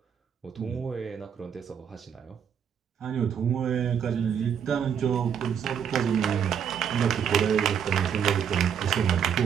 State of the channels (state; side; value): quieter; left; 8.0 dB